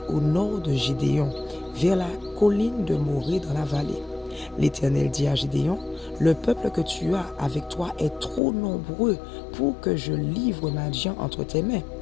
au nord de Gédéon, vers la colline de Morée dans la vallée. L'Éternel dit à Gédéon, « Le peuple que tu as avec toi est trop nombreux pour que je livre Madian entre tes mains.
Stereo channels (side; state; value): right; drops out; at 8.4 s